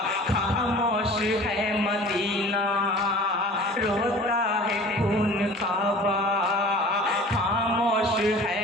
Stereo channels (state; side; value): normal; both; correlation 0.44